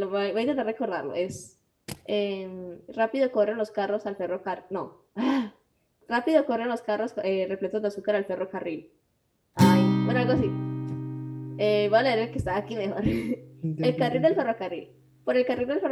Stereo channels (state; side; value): identical; both; correlation 1.00